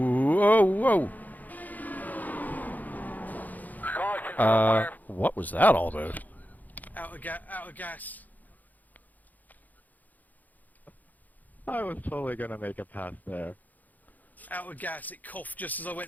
whoa. What was that all about? Out of gas. I was totally gonna make a pass there. Out of gas. It coughed just as I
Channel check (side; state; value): right; late; 0.081 ms